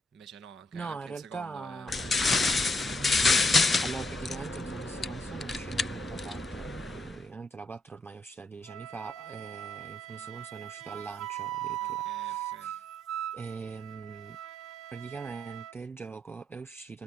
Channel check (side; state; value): both; normal; correlation 0.77